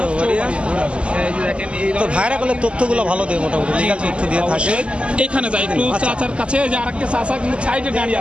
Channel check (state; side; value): late; left; 0.055 ms